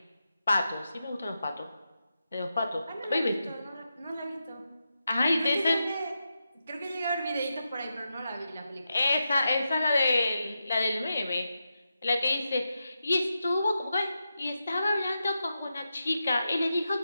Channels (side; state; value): both; inverted; correlation -0.88